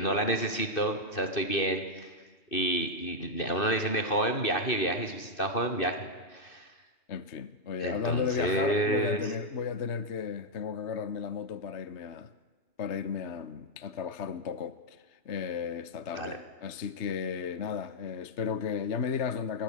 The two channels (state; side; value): late; right; 2.6 ms